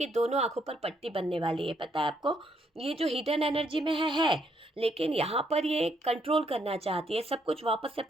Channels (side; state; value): both; normal; correlation 0.73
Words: दोनों आंखों पर पट्टी बनने वाली है। पता है आपको, ये जो हिडन एनर्जी में है, लेकिन यहाँ पर ये कंट्रोल करना चाहती है, सब कुछ वापस से